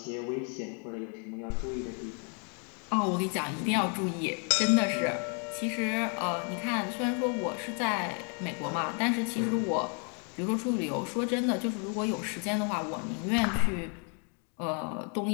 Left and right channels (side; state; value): right; quieter; 39.1 dB